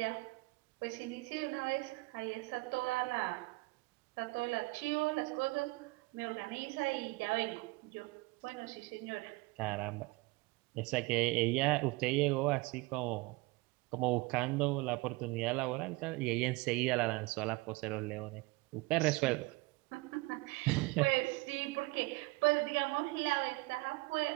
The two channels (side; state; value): left; quieter; 23.9 dB